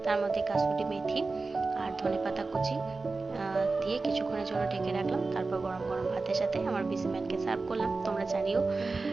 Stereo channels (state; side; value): quieter; left; 3.8 dB